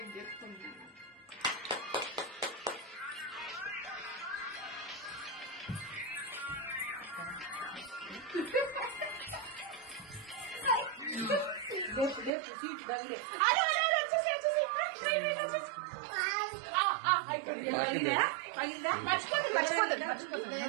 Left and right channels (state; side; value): drops out; left; at 12.3 s